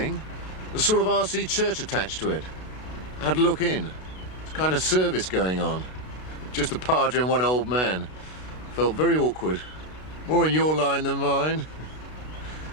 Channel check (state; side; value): late; right; 32 ms